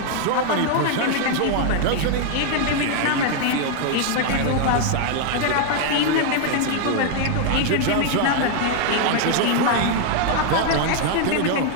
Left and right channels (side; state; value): both; different; correlation 0.00